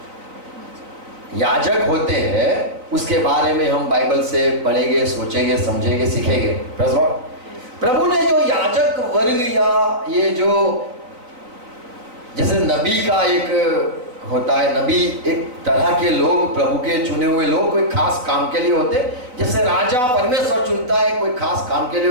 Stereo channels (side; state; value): left; late; 4.0 ms